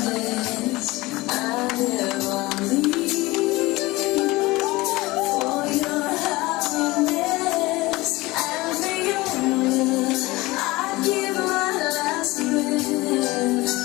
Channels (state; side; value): quieter; right; 20.8 dB